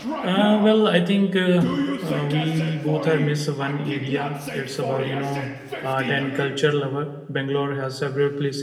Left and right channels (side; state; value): both; identical; correlation 1.00